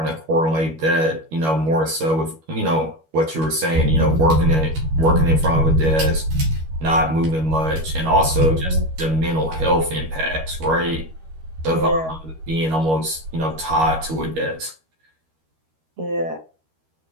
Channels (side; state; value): left; late; 13 ms